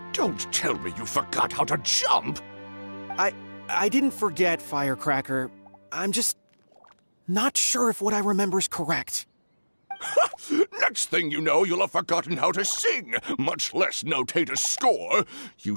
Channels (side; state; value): both; inverted; correlation -1.00